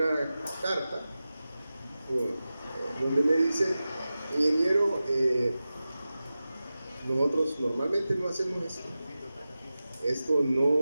carta donde me dice, ingeniero, nosotros normalmente no hacemos esto. Esto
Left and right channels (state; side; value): inverted; both; correlation -0.95